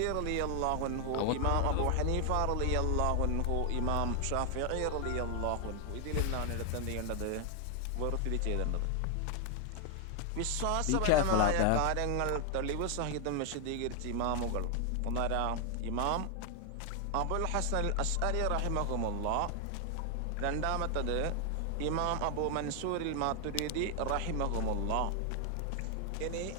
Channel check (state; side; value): different; both; correlation 0.00